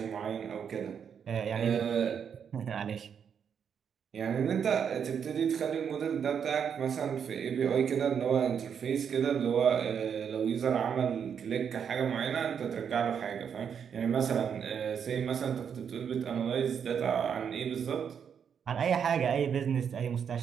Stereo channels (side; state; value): left; quieter; 7.5 dB